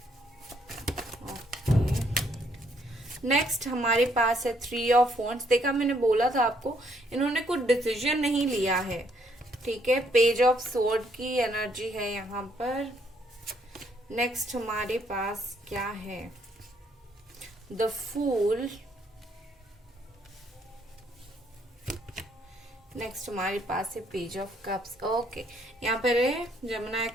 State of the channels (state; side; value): normal; both; correlation 0.69